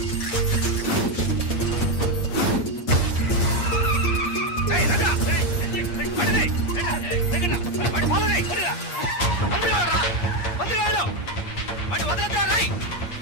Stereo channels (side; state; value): right; late; 8.4 ms